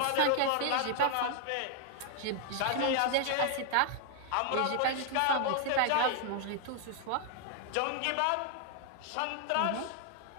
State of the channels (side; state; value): both; different; correlation 0.00